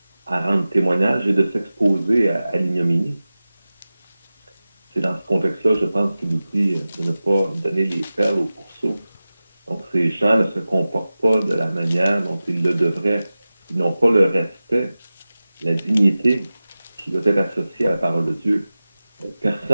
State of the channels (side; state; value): both; inverted; correlation -0.96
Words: à rendre témoignage et de s'exposer à l'ignominie. C'est dans ce contexte-là, je pense qu'il nous dit de ne pas donner les perles aux pourceaux. Donc, ces gens ne se comportent pas de la manière dont ils le devraient. Ils n'ont pas le respect, la dignité qui doit être associée à la parole de Dieu.